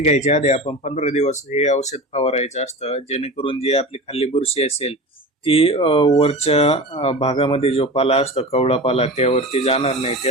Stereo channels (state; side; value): normal; both; correlation 0.31